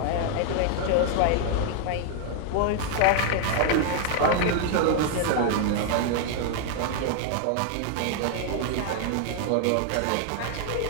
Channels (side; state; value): both; different; correlation 0.00